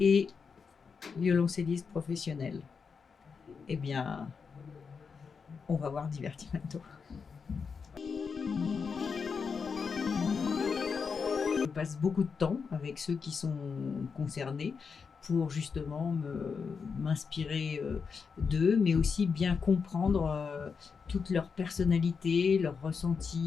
violoncelliste professionnel? Eh bien, on va voir Divertimento. Je passe beaucoup de temps avec ceux qui sont concernés pour justement m'inspirer d'eux, mais aussi bien comprendre toute leur personnalité, leurs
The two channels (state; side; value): quieter; right; 5.6 dB